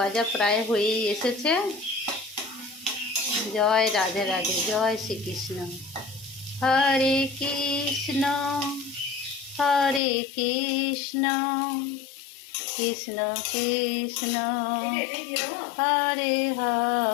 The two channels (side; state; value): right; drops out; at 10.0 s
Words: প্রায় হয়েই এসেছে। জয় রাধে রাধে, জয় শ্রীকৃষ্ণ। হরে কৃষ্ণ হরে কৃষ্ণ কৃষ্ণ কৃষ্ণ হরে